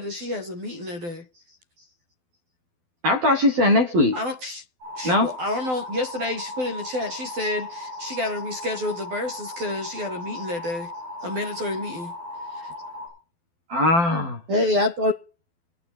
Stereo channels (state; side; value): late; left; 12 ms